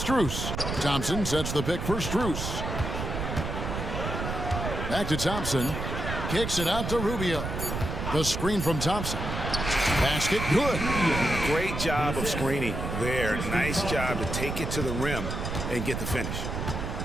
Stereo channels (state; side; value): noise; right; rumble, 4 dB below the sound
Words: Thompson sets the pick for Strus. Back to Thompson. Kicks it out to Rubio. The screen from Thompson. Basket good. Great job of screening there. Nice job to take it to the rim and get the finish.